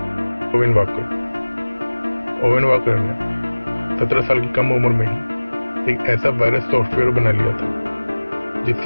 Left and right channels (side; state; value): both; inverted; correlation -1.00